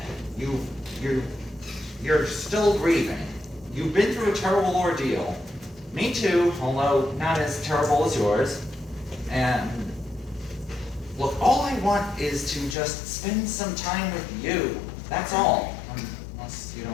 You're still grieving. You've been through a terrible ordeal. Me too, although not as terrible as yours. And look, all I want is to just spend some time with you. That's all. Unless you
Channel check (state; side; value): drops out; right; at 12.8 s